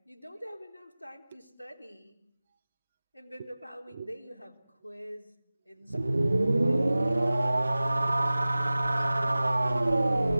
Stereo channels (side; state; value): both; inverted; correlation -0.98